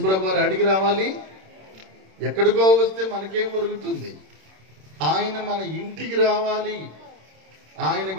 వారు అడిగి రావాలి. ఎక్కడికో వస్తే మనకేం దొరుకుతుంది? ఆయన మన ఇంటికి రావాలి. ఆయన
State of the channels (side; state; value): left; late; 26 ms